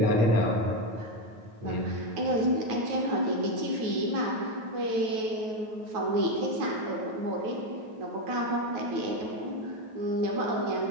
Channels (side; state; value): left; late; 9.2 ms